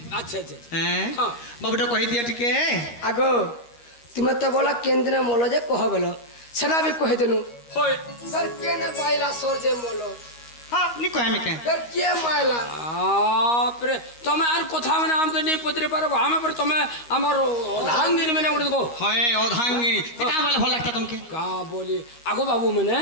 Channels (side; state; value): right; late; 13 ms